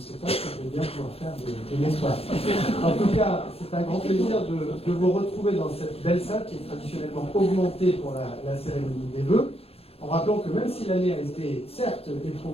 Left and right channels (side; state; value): right; late; 0.29 ms